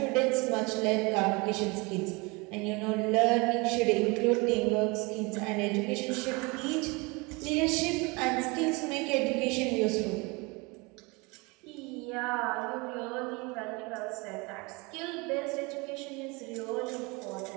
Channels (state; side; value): quieter; left; 27.0 dB